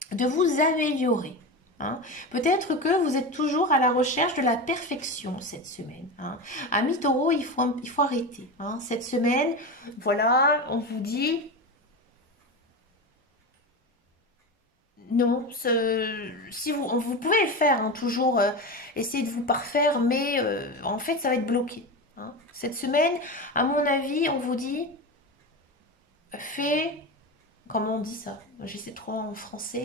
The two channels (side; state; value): both; normal; correlation 0.22